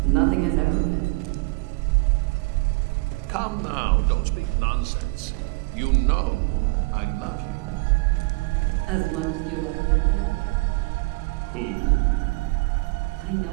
Nothing has ever been. Come now, don't speak nonsense. You know I love you. As much as you love Cynthia? Who? I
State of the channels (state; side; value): quieter; left; 26.7 dB